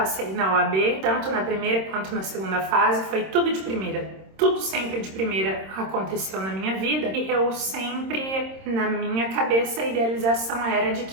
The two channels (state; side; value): late; left; 26 ms